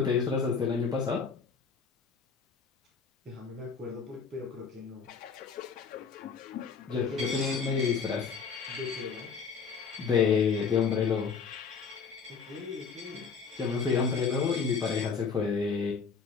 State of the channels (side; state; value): right; quieter; 5.7 dB